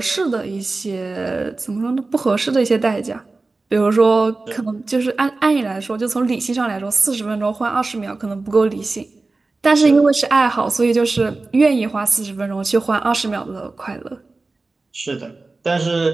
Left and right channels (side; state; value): left; quieter; 3.5 dB